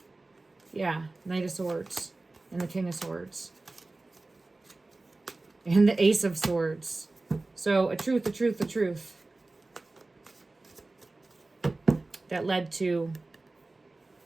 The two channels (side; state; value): left; quieter; 3.2 dB